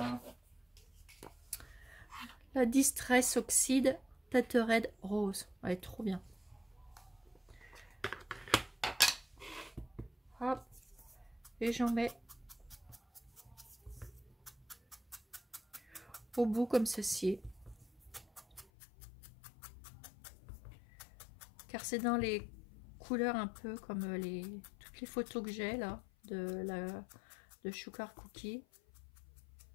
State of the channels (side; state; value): right; drops out; at 18.7 s